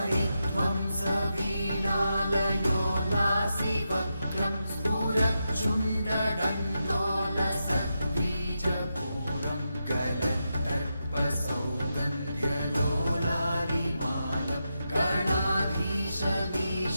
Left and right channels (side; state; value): both; inverted; correlation -0.87